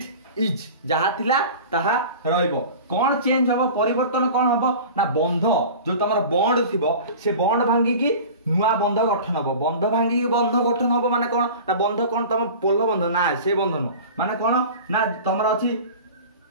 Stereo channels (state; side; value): inverted; both; correlation -0.37